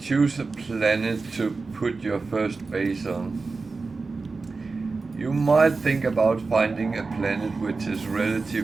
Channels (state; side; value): quieter; left; 4.1 dB